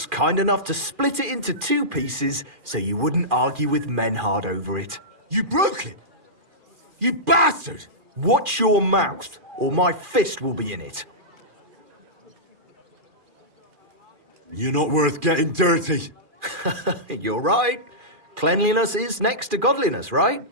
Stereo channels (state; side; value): late; left; 2.4 ms